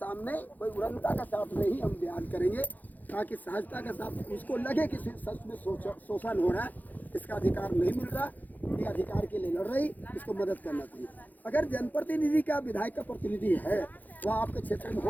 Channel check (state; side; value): late; right; 0.083 ms